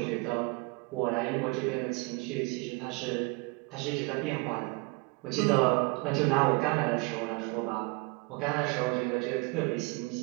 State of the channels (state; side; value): quieter; left; 28.9 dB